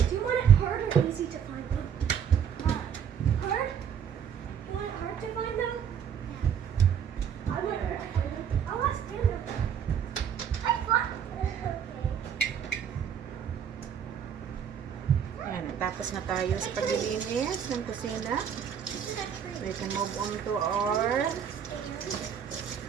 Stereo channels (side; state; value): left; quieter; 8.2 dB